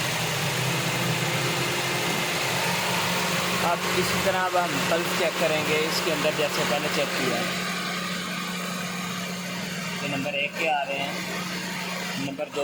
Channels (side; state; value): both; identical; correlation 1.00